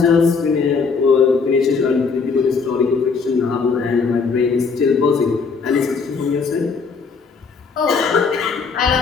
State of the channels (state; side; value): quieter; right; 5.1 dB